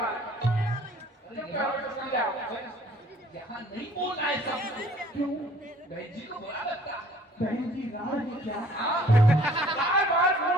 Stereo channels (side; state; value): both; normal; correlation 0.54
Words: यहाँ नहीं बोलना है सब। क्यों? बहन जी को बुरा लगता है। बहन जी राड़ है क्या? हाँ? बार-बार